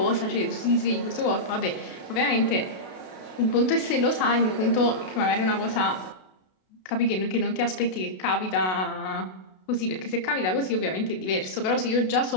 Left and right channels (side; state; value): right; late; 32 ms